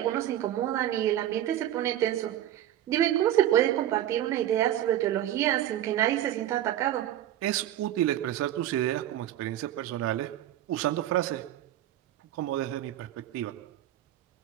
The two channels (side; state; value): left; quieter; 12.5 dB